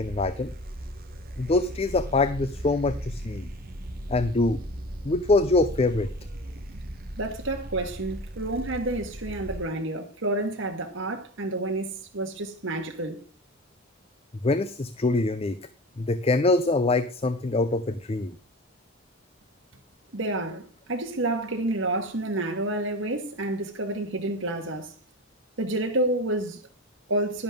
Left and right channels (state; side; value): normal; both; correlation 0.32